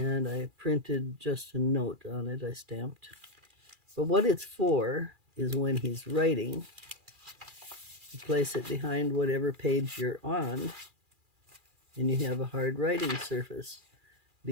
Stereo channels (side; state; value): left; late; 2.4 ms